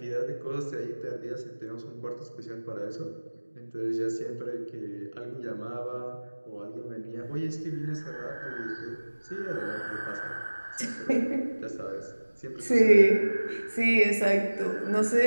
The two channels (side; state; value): both; inverted; correlation -1.00